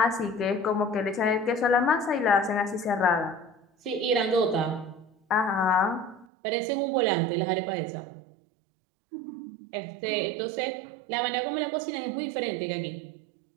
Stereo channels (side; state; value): left; drops out; at 6.2 s